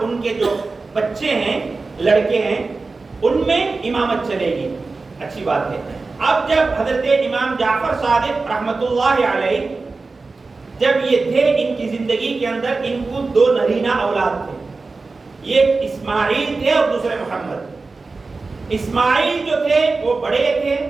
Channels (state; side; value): quieter; left; 3.9 dB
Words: ان کے جو بچے ہیں، لڑکے ہیں، ان میں امامت چلے گی. اچھی بات ہے. اب جب حضرت امام جعفر صادق رحمت اللہ علیہ جب یہ تھے، ان کی زندگی کے اندر ان کو 2 نرینہ اولاد تھے. ایک اسماعیل تھے اور دوسرے محمد. اسماعیل جو تھے وہ بڑے تھے،